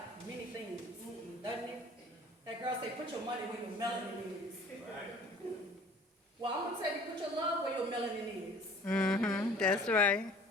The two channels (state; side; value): normal; both; correlation 0.49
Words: Doesn't it? That girl say, put your money where your melanin is. Well, I'm going to tell you, put your love where your melanin is. That's right.